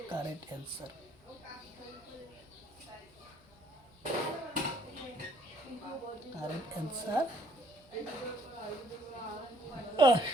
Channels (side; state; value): both; normal; correlation 0.62